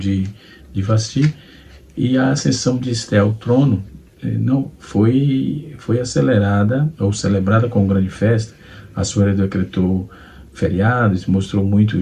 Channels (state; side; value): identical; both; correlation 1.00